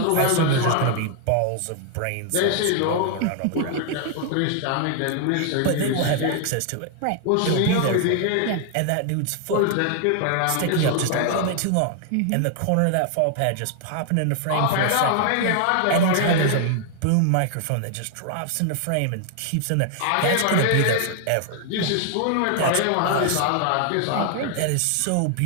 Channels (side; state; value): both; different; correlation 0.00